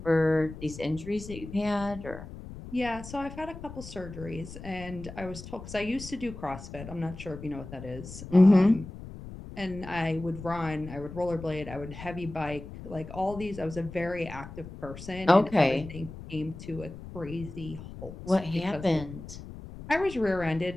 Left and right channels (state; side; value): noise; left; rumble, 13 dB below the sound